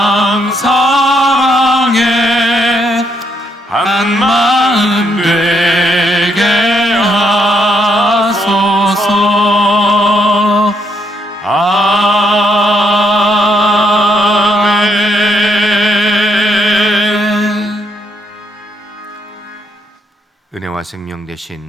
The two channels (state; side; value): normal; both; correlation 0.74